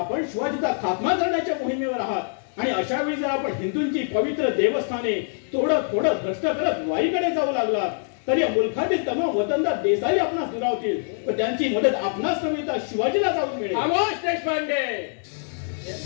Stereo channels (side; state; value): right; silent; digital silence